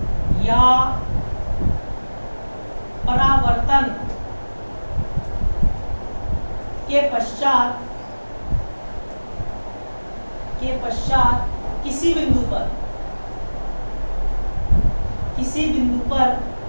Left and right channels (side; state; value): both; inverted; correlation -1.00